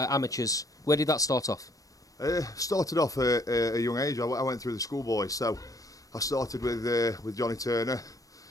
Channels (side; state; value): right; late; 0.17 ms